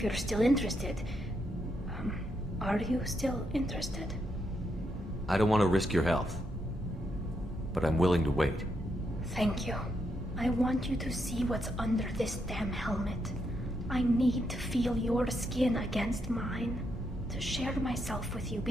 you're still interested. Are you still interested? I don't want to risk your health, but I'm willing to wait. Thank you. I want you to see what's under this damn helmet. I need to feel your skin against mine, to share myself with you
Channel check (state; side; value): normal; both; correlation 0.80